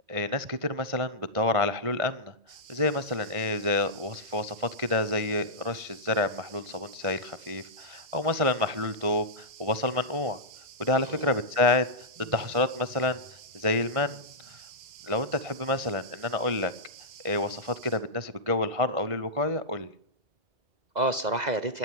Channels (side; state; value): left; late; 1.5 ms